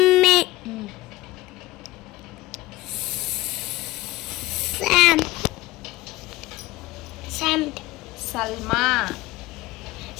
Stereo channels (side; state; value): right; quieter; 18.6 dB